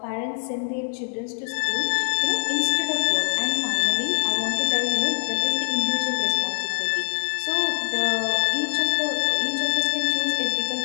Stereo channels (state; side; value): silent; right; 58 dB below the other